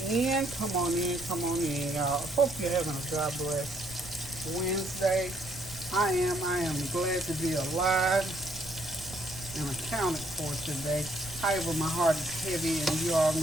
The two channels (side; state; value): right; noise; rumble, 15 dB below the sound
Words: in, come on in, come on in, y'all. Hope you're having a God bless Wednesday. I am glad to be alive and accounted for today. However, my heart is heavy, and you all